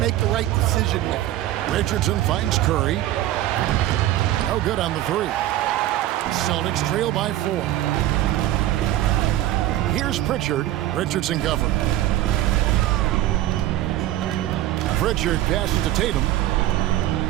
the right decision with it. Richardson finds Curry. No good on the 3. Celtics trail by 4. Here's Pritchard. Richardson covered. Pritchard passes to Tatum.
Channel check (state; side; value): quieter; left; 14.1 dB